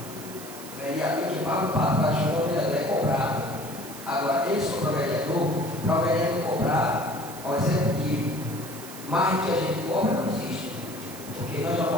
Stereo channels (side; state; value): right; noise; hiss, 14 dB below the sound